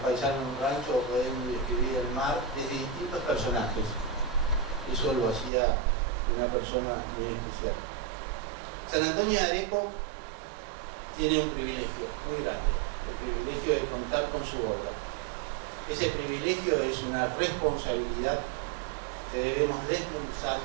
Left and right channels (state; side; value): drops out; left; at 5.5 s